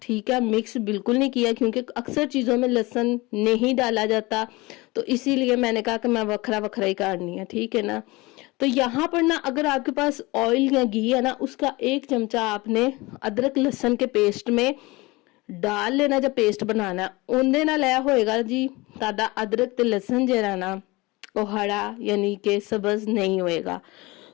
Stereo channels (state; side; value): quieter; right; 22.8 dB